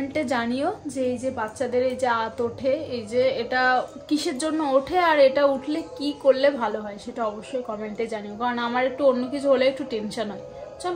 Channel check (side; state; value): both; identical; correlation 1.00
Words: জানিও যে এই যে বাচ্চাদের এই যে আঁত ওঠে, এই যে এটা কিসের জন্য ওঠে, আর এটা উঠলে কি করলে ভালো হয়, সেটা অবশ্যই কমেন্টে জানিও, কারণ আমার একটু অন্য কিছু হলে একটু টেনশন হয়।